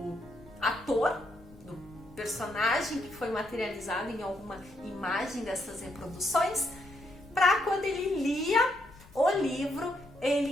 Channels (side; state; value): left; noise; rumble, 23 dB below the sound